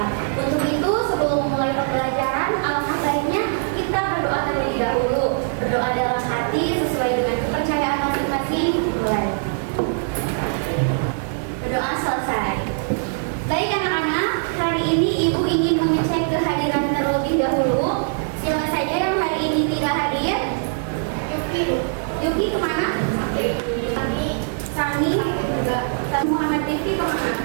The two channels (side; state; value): left; silent; digital silence